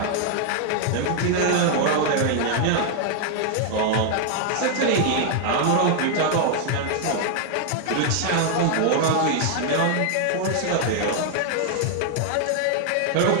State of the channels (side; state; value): both; different; correlation 0.00